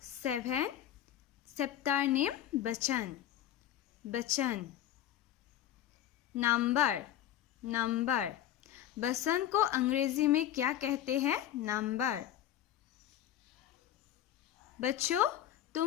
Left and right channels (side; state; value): right; quieter; 11.7 dB